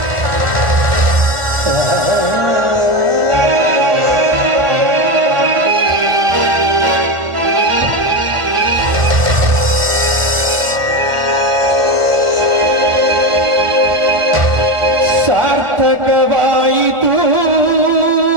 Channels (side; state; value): left; late; 1.4 ms